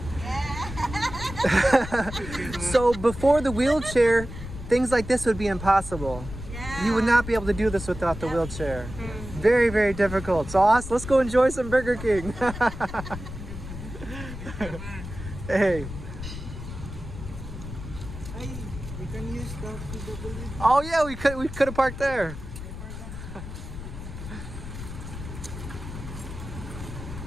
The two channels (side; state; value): left; noise; rumble, 10 dB below the sound